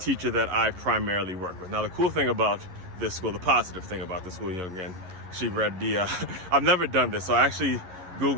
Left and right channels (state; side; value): late; left; 11 ms